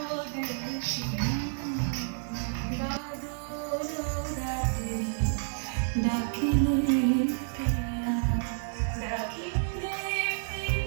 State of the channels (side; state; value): left; silent; digital silence